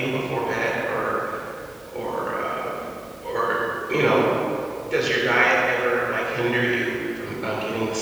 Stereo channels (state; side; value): noise; right; hum, 30 dB below the sound